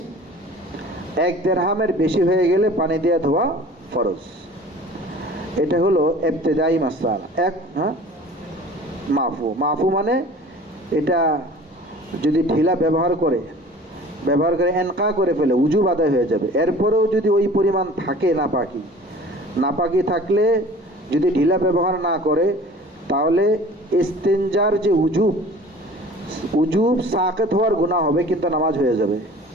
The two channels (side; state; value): both; normal; correlation 0.45